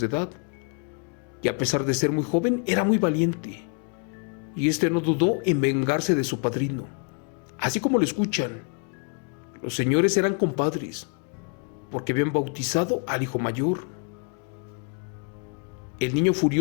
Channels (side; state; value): right; quieter; 37.3 dB